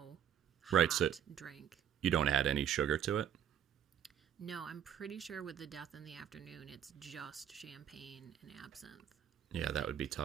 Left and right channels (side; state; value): left; quieter; 9.6 dB